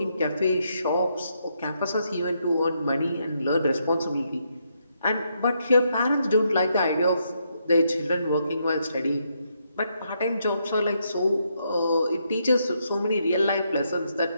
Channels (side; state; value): both; inverted; correlation -0.78